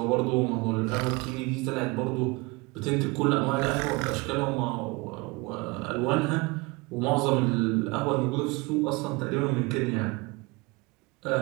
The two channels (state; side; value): quieter; left; 25.4 dB